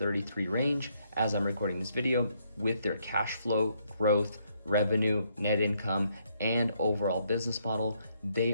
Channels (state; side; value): inverted; both; correlation -0.73